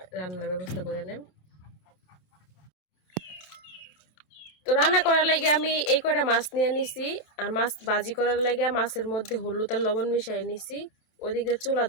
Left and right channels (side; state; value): right; late; 27 ms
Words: রান্নার ব্যবস্থা করে নেম তো রান্না করার লাগে আমি এই কয়টা মাছ নিয়ে নিছি আর মাছ ভাজি করার লাগে মাছের মধ্যে হলুদ আর লবণ মিশিয়ে নিছি ওইদিকে চুলা